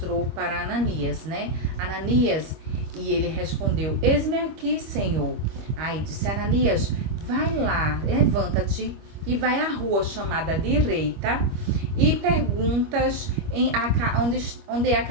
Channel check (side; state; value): left; late; 25 ms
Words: para Ananias, né? Ananias, e ele respondeu: eis-me aqui, Senhor. Aí disse Ananias: vai lá, levanta-te e vai à rua chamada Direita e perguntas onde é a